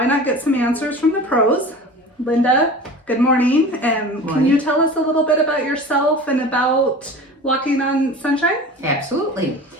not get some answers from the pros? Linda, good morning. Can you tell us a little bit about yourself and about Walking on Sunshine? Absolutely.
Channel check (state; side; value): normal; both; correlation 0.36